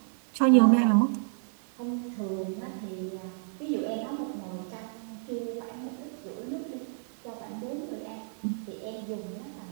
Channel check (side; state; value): left; silent; 57 dB below the other